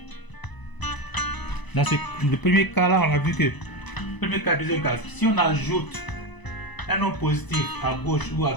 Dans le premier cas là, on a vu que premier cas, deuxième cas, si on ajoute un nombre positif à gauche ou à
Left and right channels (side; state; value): right; late; 1.0 ms